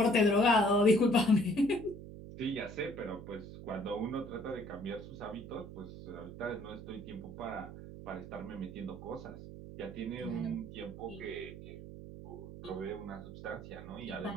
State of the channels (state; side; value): noise; right; hum, 12 dB below the sound